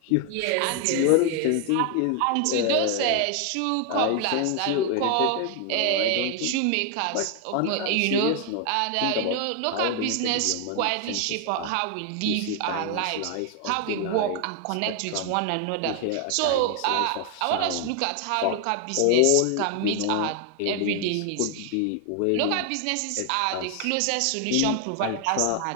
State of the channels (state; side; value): different; both; correlation 0.00